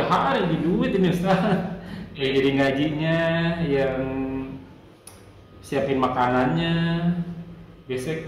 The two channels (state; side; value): identical; both; correlation 1.00